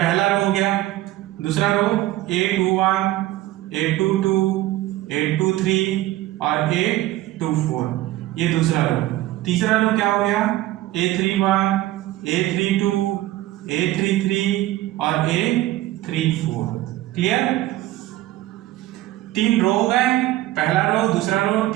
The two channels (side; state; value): left; quieter; 15.8 dB